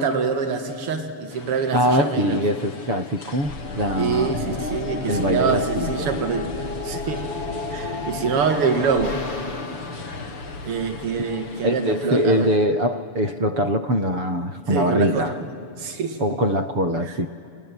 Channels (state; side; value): late; left; 7.0 ms